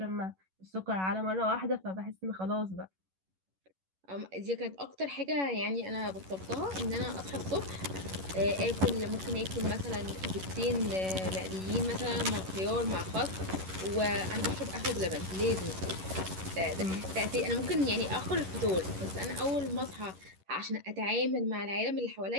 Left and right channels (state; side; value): late; left; 11 ms